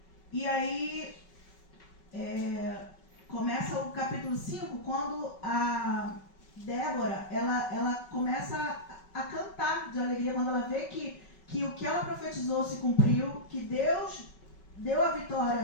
E aí, começa o capítulo 5, quando a Débora, ela começa a cantar de alegria, quando ela vê que o que ela profetizou se cumpriu, que Deus deu a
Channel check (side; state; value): right; late; 5.3 ms